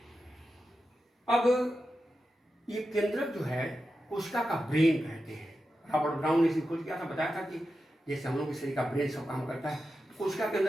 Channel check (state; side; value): normal; both; correlation 0.90